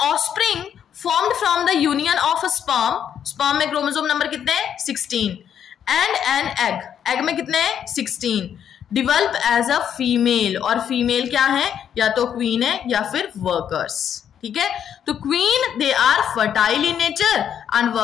formed from the union of a sperm में क्रोमोसोम नंबर कितने हैं, 16, and an egg में कितने हैं, 16, develop as a female, और फीमेल क्या है, या तो क्वीन है या फिर वर्कर्स, ठीक है। तो queen they are fertile in nature and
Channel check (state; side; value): quieter; right; 9.0 dB